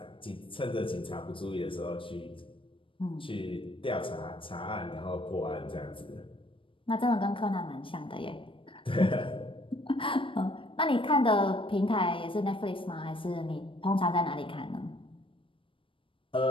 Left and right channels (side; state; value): right; late; 0.25 ms